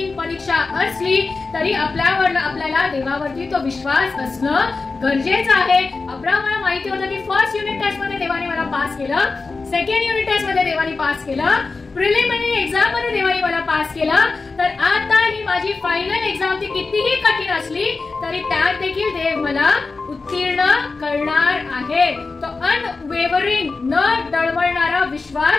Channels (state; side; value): quieter; right; 4.0 dB